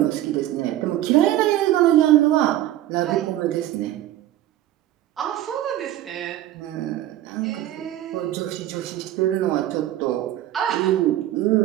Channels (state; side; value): quieter; left; 13.5 dB